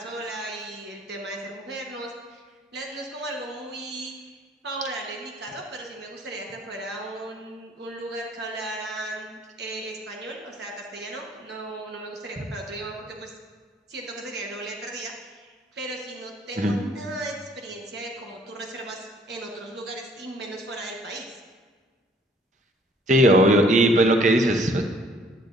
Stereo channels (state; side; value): normal; both; correlation 0.59